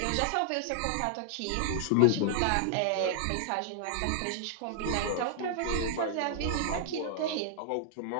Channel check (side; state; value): both; different; correlation -0.01